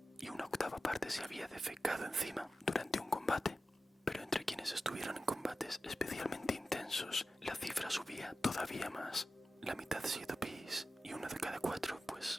y una octava parte se había defecado encima durante un combate. Pero entre quienes estuvieron en combates especialmente intensos, la cifra subía todavía más. La mitad sido pis y uno de cada 4,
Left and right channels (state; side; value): normal; both; correlation 0.94